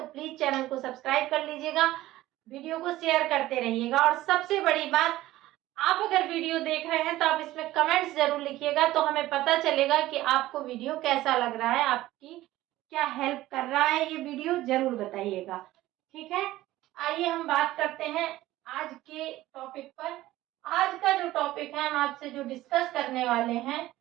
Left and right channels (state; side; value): quieter; left; 16.1 dB